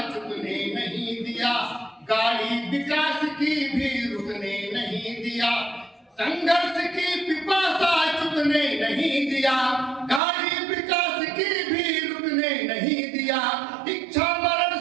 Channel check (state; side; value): drops out; left; at 10.2 s